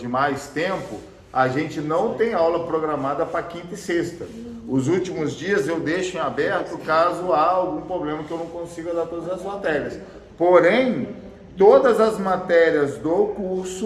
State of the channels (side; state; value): both; identical; correlation 1.00